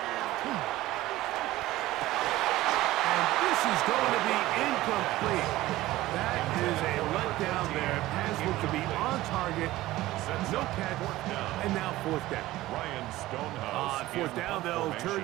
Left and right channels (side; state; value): left; quieter; 16.8 dB